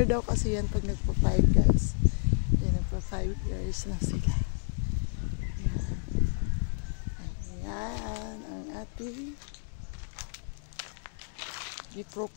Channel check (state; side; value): silent; right; 57 dB below the other